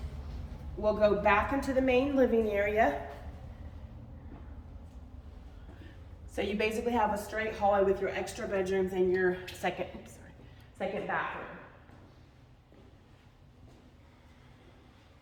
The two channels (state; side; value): identical; both; correlation 1.00